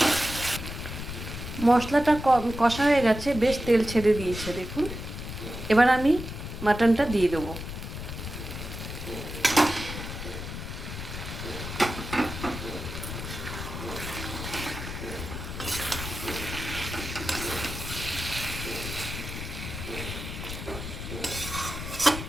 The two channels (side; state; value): left; noise; rumble, 7 dB below the sound